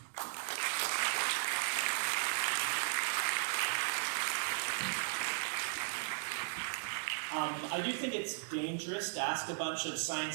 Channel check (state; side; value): silent; left; digital silence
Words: I do think it's dangerous to ask a bunch of